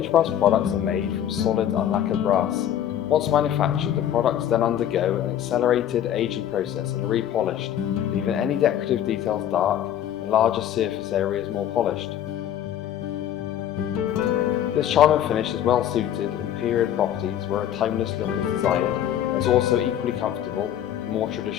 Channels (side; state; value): right; quieter; 10.7 dB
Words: Aged brass products are made from solid unlacquered brass. Once manufactured, the products then undergo an accelerated aging process and are repolished, leaving any decorative details dark and larger surface areas more polished. This charming finish is well suited in period properties where a timeless look is desired and is also equally comfortable in more